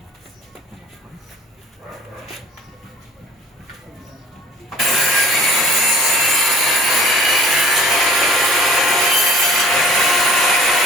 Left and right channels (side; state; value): both; normal; correlation 0.49